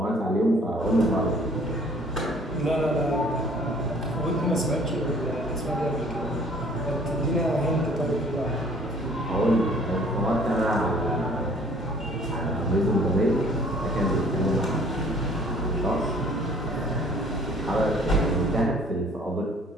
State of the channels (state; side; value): normal; both; correlation 0.54